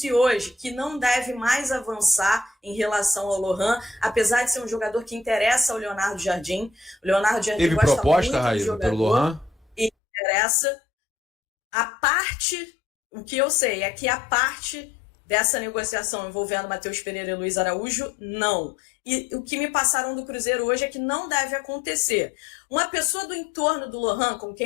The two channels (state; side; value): drops out; right; at 9.9 s